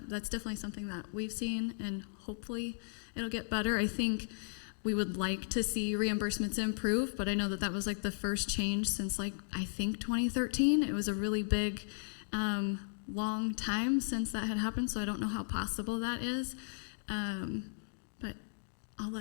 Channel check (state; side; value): silent; right; digital silence